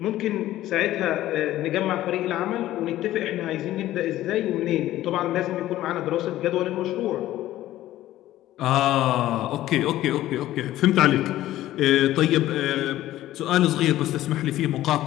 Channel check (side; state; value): right; quieter; 14.5 dB